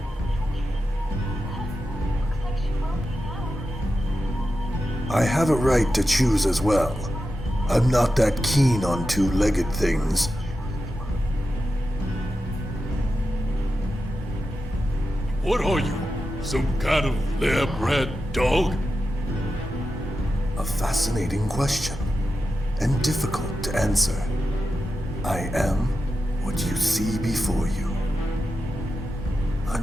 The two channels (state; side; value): normal; both; correlation 0.90